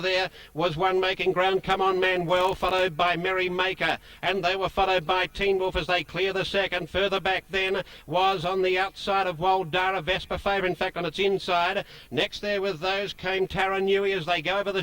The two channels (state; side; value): identical; both; correlation 1.00